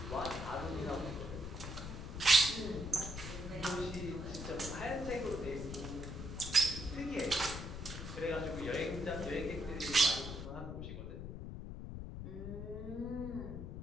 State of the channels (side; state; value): left; noise; rumble, 7 dB below the sound